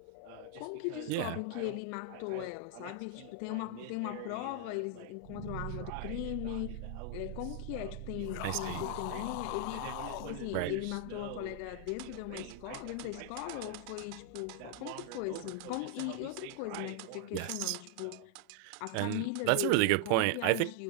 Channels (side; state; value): both; different; correlation 0.00